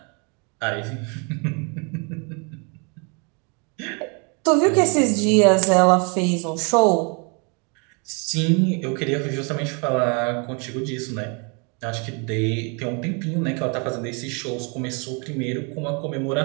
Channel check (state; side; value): quieter; left; 34.3 dB